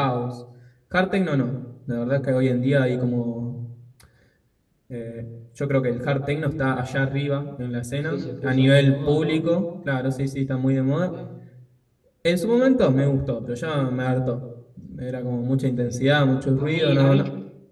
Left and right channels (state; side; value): identical; both; correlation 1.00